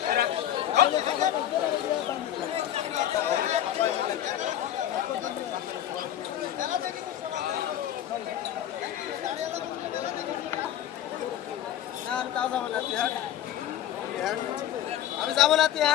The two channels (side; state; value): right; quieter; 11.4 dB